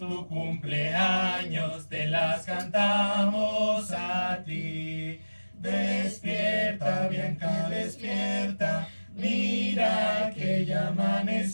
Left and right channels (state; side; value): inverted; both; correlation -1.00